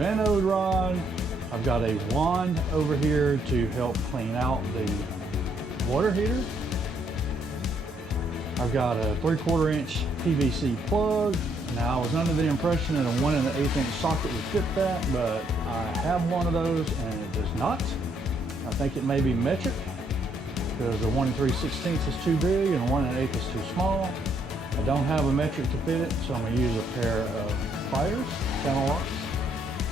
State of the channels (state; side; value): normal; both; correlation 0.71